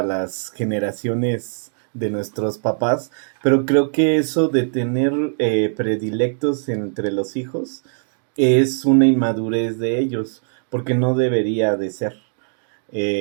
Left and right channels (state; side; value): silent; left; digital silence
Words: las generaciones de nuestros papás, pero creo que eso de tener predilectos entre los hijos es una inmadurez de ellos, porque no debería de ser,